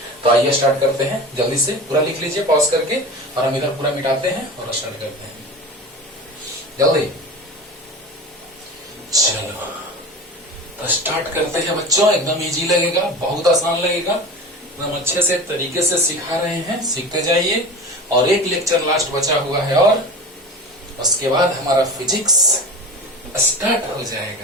तो आइए स्टार्ट करते हैं। जल्दी से पूरा लिख लीजिए पॉज करके, और हम इधर पूरा मिटाते हैं और स्टार्ट करते हैं जल्दी। चलो तो स्टार्ट करते हैं बच्चों। एकदम इजी लगेगा, बहुत आसान लगेगा, एकदम अच्छे से तरीके से सिखा रहे हैं, सीखते जाइए। और एक लेक्चर लास्ट बचा हुआ है और उसके बाद हमारा फिजिक्स स्टार्ट हो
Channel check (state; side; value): normal; both; correlation 0.32